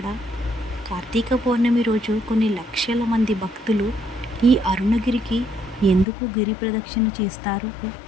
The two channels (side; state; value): right; drops out; at 6.1 s